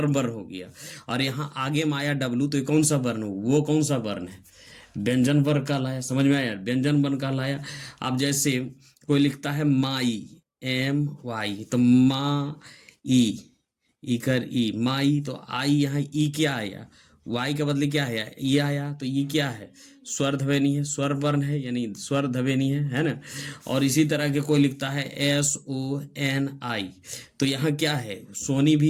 वर्ण हो गया, और यहाँ आगे में आया डब्लू, तो ये कौन सा वर्ण हो, वो कौन सा वर्ण है, व्यंजन वर्ण कहलाया। समझ में आया, व्यंजन वर्ण कहलाया। अब जैसे कोई लिखता है माई, MY, तो मा ई कर ई, माई, तो आई यहाँ ई क्या आया, वाई के बदले क्या है, ये आया, तो ये क्या है, स्वर ध्वनि है, स्वर वर्ण है, यानी स्वर ध्वनि है ना। और इसी तरह के कोई लिखता है SONI, तो यहाँ क्या है, सोनी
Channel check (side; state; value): both; identical; correlation 1.00